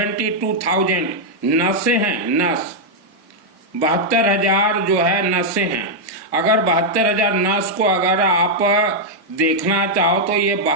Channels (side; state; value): both; normal; correlation -0.04